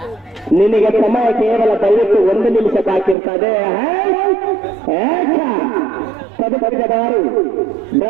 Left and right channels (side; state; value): left; drops out; at 3.2 s